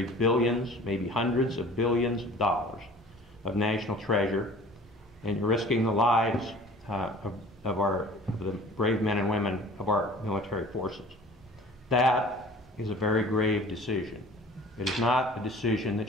billions, maybe hundreds of billions of dollars of national treasure, and you're risking the lives of the brave men and women of our military forces. That is a very grave decision. It is not a decision that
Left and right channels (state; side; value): normal; both; correlation 0.46